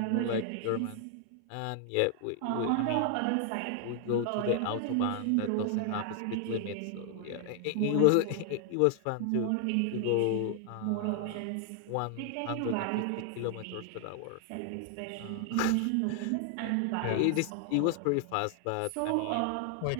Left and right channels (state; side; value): different; both; correlation 0.00